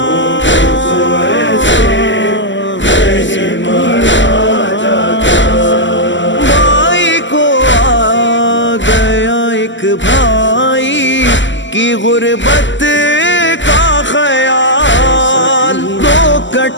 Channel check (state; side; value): late; right; 0.54 ms